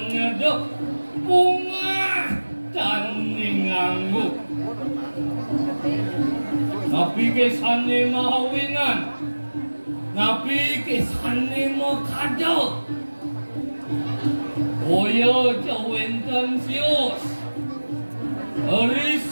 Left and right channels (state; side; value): inverted; both; correlation -1.00